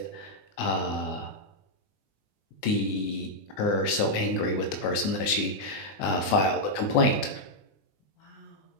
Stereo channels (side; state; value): right; late; 20 ms